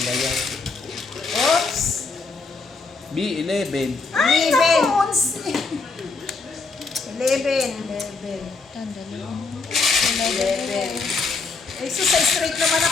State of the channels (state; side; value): quieter; right; 4.1 dB